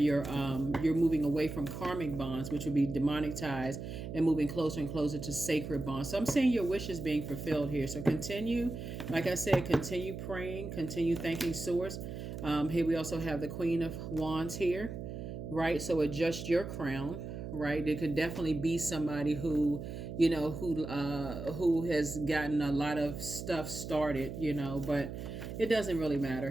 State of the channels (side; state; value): right; noise; hum, 8 dB below the sound